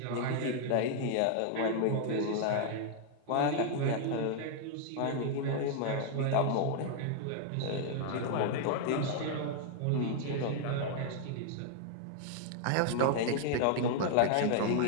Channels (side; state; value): both; different; correlation -0.01